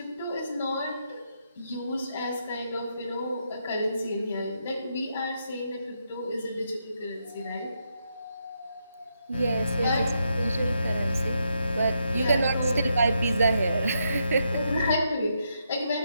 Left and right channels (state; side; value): inverted; both; correlation -0.80